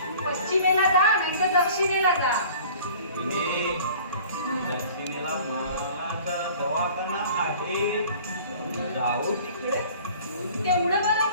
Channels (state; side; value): inverted; both; correlation -0.47